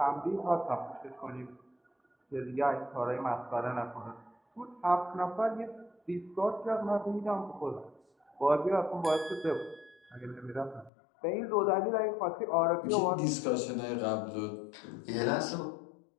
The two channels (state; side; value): drops out; right; at 10.9 s